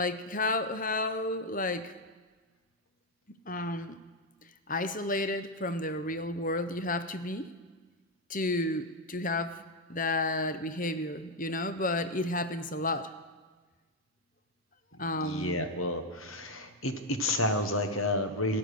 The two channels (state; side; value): normal; both; correlation 0.04